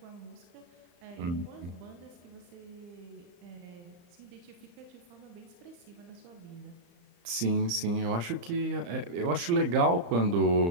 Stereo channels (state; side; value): late; left; 35 ms